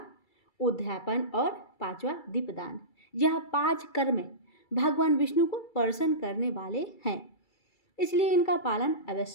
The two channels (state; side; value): late; right; 2.3 ms